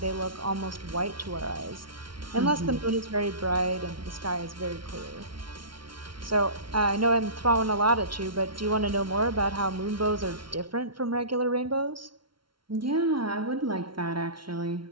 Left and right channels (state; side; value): late; left; 0.73 ms